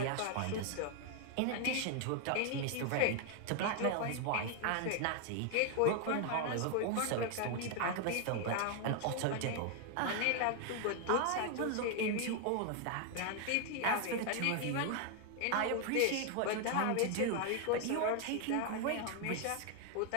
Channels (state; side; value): different; both; correlation 0.00